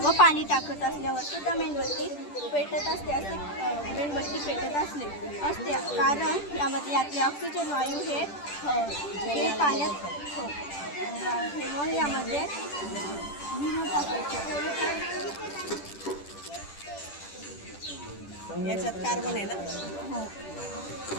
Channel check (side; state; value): right; late; 10 ms